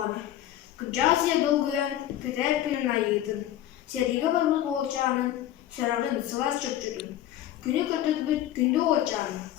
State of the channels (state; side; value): quieter; right; 12.6 dB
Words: Kırcaasiye dolguyan Peter Pilin ayıydın. Seriga barбыз болчанын, сörағын сылас чөпчүдүн. Күнү көтөтбүт күндү очан,